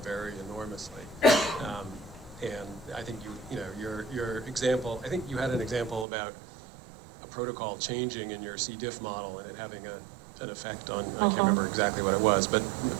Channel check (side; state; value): left; drops out; at 6.1 s